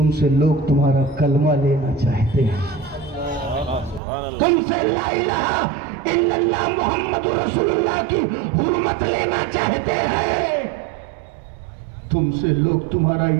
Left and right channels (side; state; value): left; drops out; at 4.0 s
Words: سے لوگ تمہارا کلمہ لینا چاہتے ہیں. تم سے لا الہ الا اللہ محمد رسول اللہ کی حرمت لینا چاہتے ہیں. تم سے لوگ تمہارا